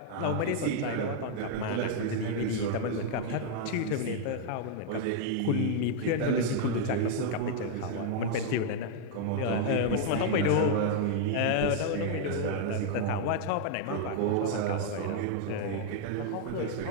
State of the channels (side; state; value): both; different; correlation 0.00